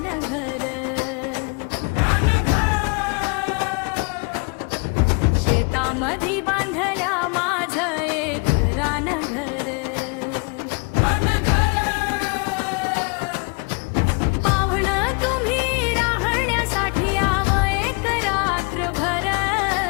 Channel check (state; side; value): quieter; right; 32.9 dB